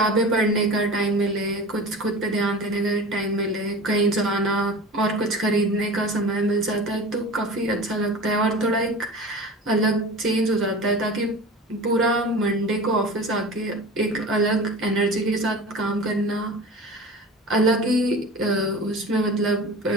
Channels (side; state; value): both; normal; correlation 0.35